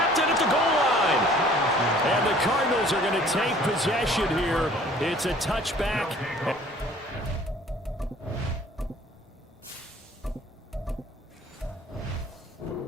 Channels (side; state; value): both; normal; correlation 0.53